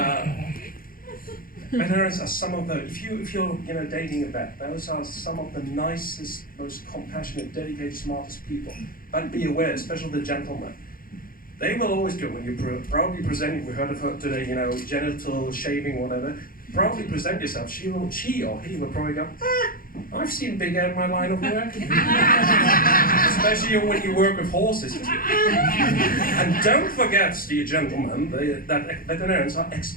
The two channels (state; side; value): late; right; 0.41 ms